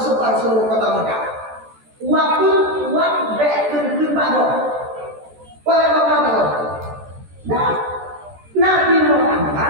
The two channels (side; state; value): left; late; 13 ms